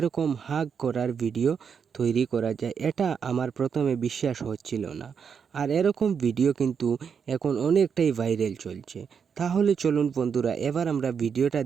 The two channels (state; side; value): quieter; left; 6.7 dB